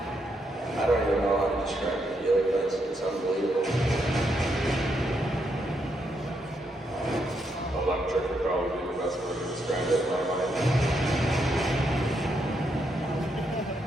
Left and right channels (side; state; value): both; normal; correlation 0.78